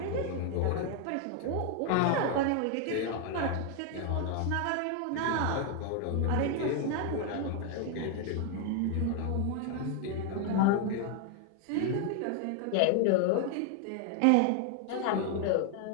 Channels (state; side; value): different; both; correlation 0.01